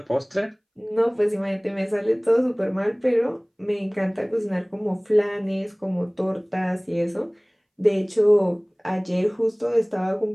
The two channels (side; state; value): both; identical; correlation 1.00